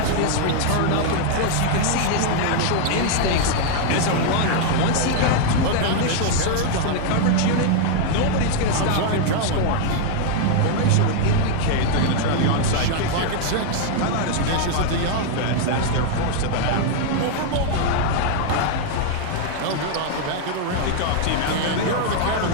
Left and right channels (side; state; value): both; different; correlation 0.00